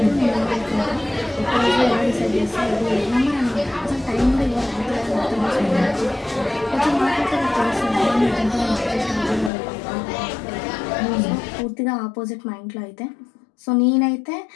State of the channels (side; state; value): right; drops out; at 9.5 s